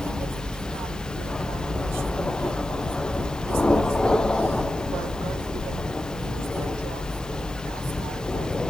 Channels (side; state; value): left; noise; hiss, 22 dB below the sound